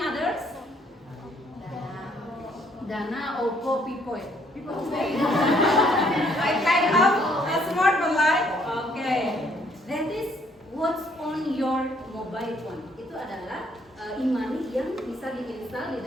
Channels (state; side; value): normal; both; correlation 0.66